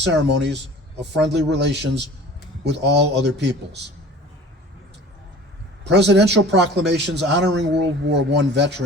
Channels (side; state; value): both; normal; correlation 0.43